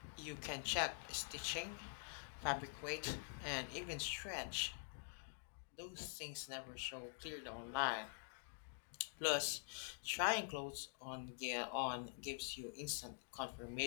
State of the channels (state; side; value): silent; right; digital silence